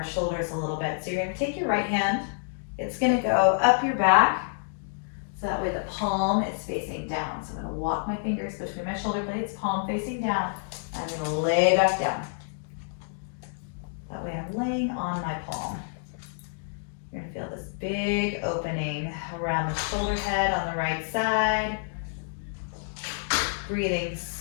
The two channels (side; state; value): right; silent; digital silence